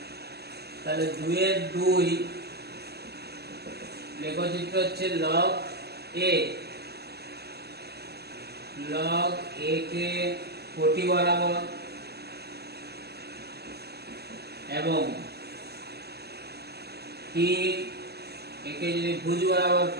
তাহলে 2 এর 2 লেখচিত্র হচ্ছে log a কে কোটি বরাবর এবং t একে যদি ভুজ বরাবর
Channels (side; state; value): left; late; 0.47 ms